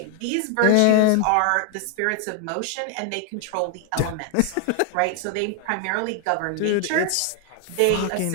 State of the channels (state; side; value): different; both; correlation 0.00